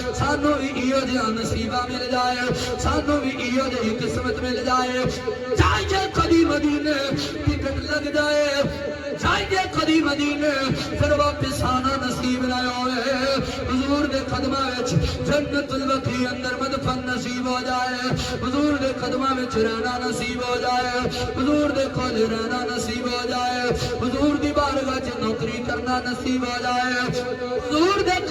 سانو بھی ایو جیاں نصیبہ مل جائے سانو بھی ایو جیاں قسمت مل جائے چاہیے کبھی مدینے ٹکٹ لگ جائے چاہیے کدی مدینے پھر واپس آنا نصیب نہ ہوئے حضور دے قدمہ وچ جنت البقیع اندر مدفن نصیب ہو جائے حضور دے قدمہ وچ رہنا نصیب ہو جائے حضور دے کول رہنا نصیب ہو جائے حضور دی بارگاہ وچ نوکری کرنا نصیب ہو جائے حضور دے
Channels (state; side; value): identical; both; correlation 1.00